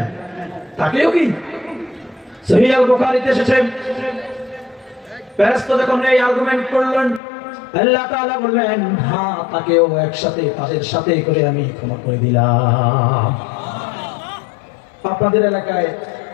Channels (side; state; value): right; drops out; at 7.2 s